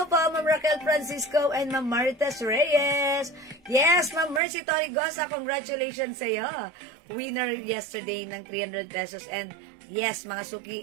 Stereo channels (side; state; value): left; drops out; at 4.4 s